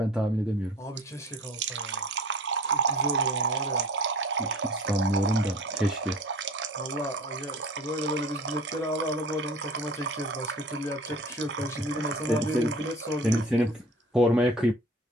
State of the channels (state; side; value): normal; both; correlation 0.44